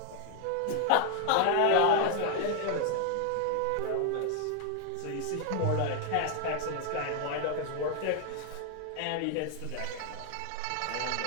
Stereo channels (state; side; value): different; both; correlation 0.00